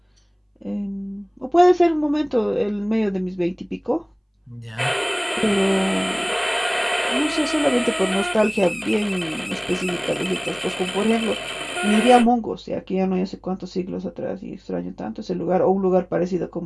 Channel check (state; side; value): identical; both; correlation 1.00